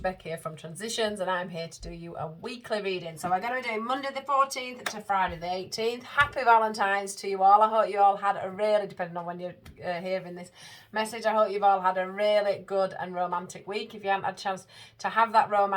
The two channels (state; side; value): identical; both; correlation 1.00